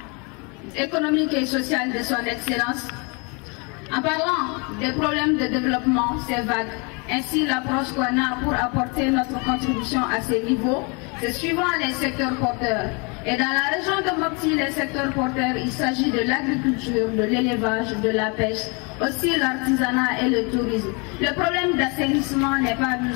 économique et social de son Excellence. En parlant des problèmes de développement, c'est vague. Ainsi, l'approche qu'on a pour apporter notre contribution à ces niveaux, c'est suivant les secteurs porteurs. Et dans la région de Mopti, les secteurs porteurs, il s'agit de l'agriculture, de l'élevage, de la pêche, aussi l'artisanat et le tourisme. Le problème d'assainissement n'est pas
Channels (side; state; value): right; quieter; 32.0 dB